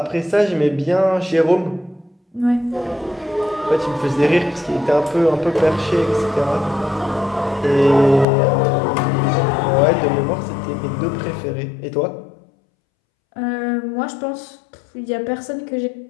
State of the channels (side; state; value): right; drops out; at 8.2 s